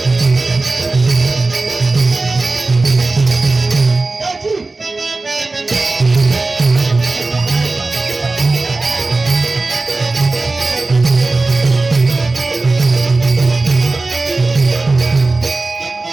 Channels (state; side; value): quieter; left; 3.4 dB